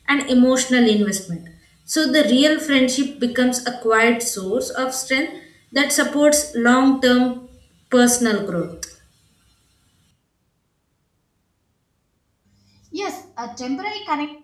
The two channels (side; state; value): both; identical; correlation 1.00